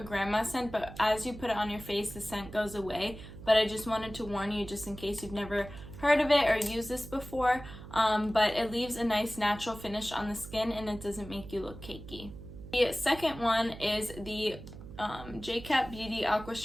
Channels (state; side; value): noise; right; hum, 14 dB below the sound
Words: grandma scent, but as you put it on your face, the scent goes away. But I just wanted to warn you, just in case you've never heard of it or used this before, but it leaves a nice natural finish on the skin, and it doesn't make you look cakey. The second one is the Jcat Beauty